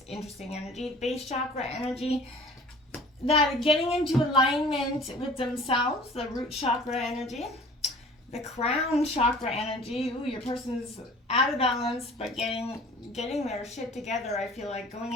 Interesting energy. Base chakra energy. That getting into alignment with themselves. The root chakra energy. The crown chakra energy. Ooh, your person's out of balance, but getting their shit together. I feel like going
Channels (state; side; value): normal; both; correlation 0.47